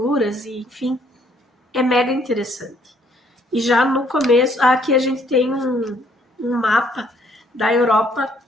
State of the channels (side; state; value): both; normal; correlation 0.66